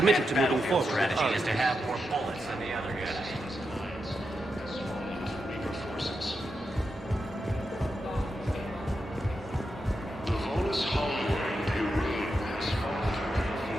to moving battlefield forward with strategy Arya. is to have more bullets than the other guy. The Volus homeworld, Irene, has fallen to rebel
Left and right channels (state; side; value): normal; both; correlation 0.87